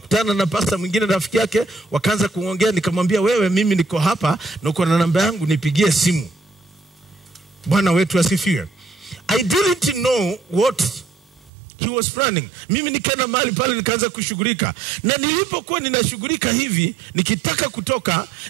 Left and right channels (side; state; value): left; drops out; at 11.5 s